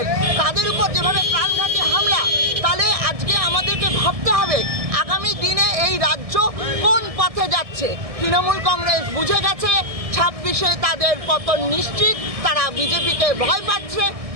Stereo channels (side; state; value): left; late; 1.7 ms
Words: তাদের উপর যেভাবে প্রাণঘাতী হামলা, তাহলে আজকে আমাদেরকে ভাবতে হবে আগামী দিনে এই রাজ্য কোন পথে যাচ্ছে। তৃণমূল কংগ্রেস বুঝে গেছে 26-এ তাদের পতন নিশ্চিত, তারা বিজেপিকে ভয় পাচ্ছে,